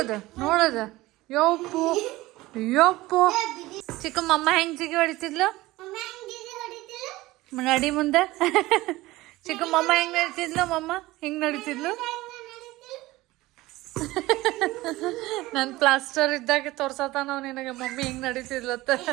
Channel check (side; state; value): left; quieter; 18.7 dB